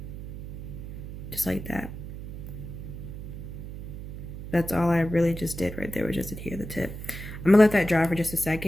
just like that. That's all I really just did right there, was just adhere the tip. I'm gonna let that dry for just a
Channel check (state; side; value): noise; right; hum, 9 dB below the sound